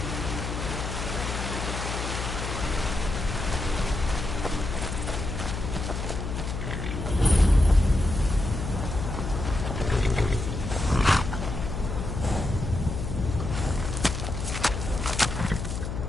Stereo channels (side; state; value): left; noise; hum, 4 dB below the sound